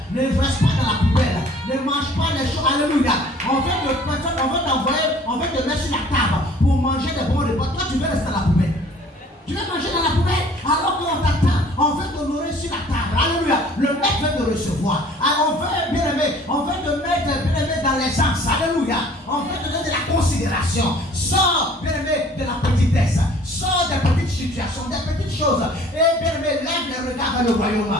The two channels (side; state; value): both; normal; correlation 0.52